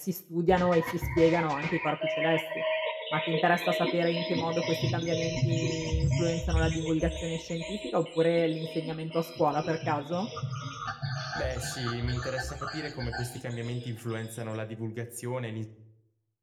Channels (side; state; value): both; identical; correlation 1.00